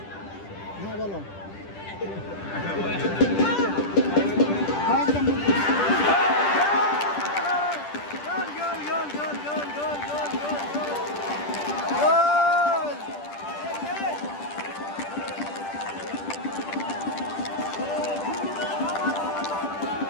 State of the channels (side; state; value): right; late; 10 ms